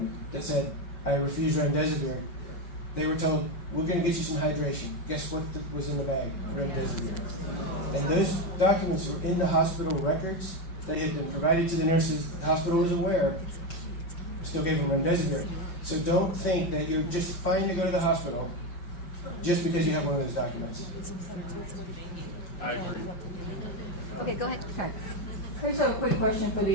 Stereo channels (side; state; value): right; late; 5.2 ms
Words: that said, I refuse remdesivir. They were told, we're going to get you some hydration. Guess what was in the bag? Remdesivir. And those documents were in the hospital records. They had been provided to the nurses. The hospital was aware. Still gave them remdesivir. So don't think that you're just fine to go to the hospital just because you have one of those documents. I agree. Okay, go ahead. Karen. I just have a quick question for